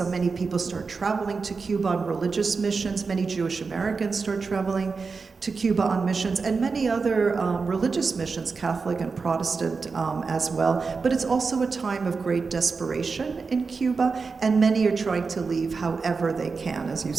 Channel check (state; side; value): quieter; left; 4.7 dB